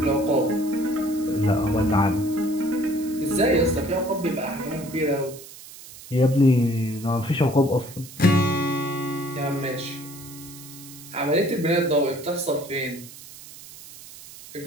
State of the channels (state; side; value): noise; right; hiss, 17 dB below the sound